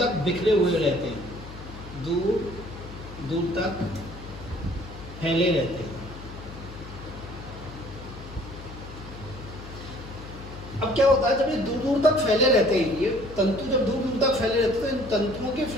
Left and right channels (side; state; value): left; noise; hum, 14 dB below the sound